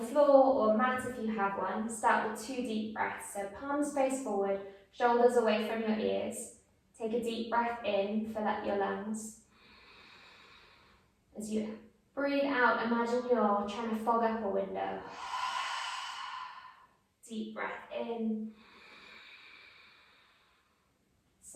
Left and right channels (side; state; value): both; identical; correlation 1.00